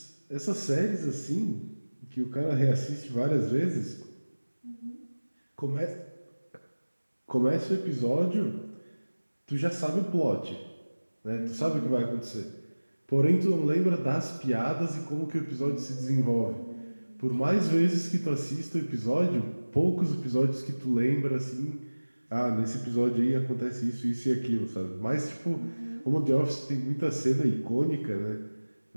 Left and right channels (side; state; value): both; inverted; correlation -1.00